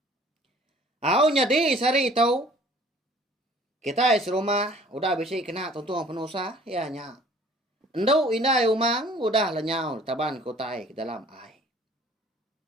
Nyadi sari tau. Kita serumah. Udah bisi kena tuntung penusah. Ya nya. Endau indai umang. Udah lenyau taban ko tai ke dalam air.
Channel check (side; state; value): both; normal; correlation 0.52